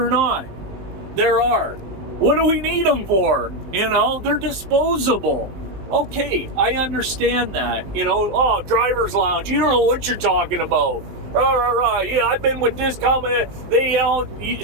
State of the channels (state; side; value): late; left; 19 ms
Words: not, there are. What do we need them for? You know, they're disposable. Okay, I understand that. You know, oh, driver's lounge, you don't know what you're talking about. Yeah, I've been with this company. They, you know,